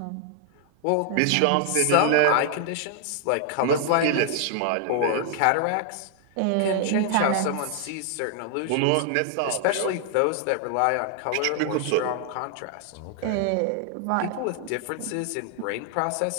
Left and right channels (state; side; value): different; both; correlation 0.00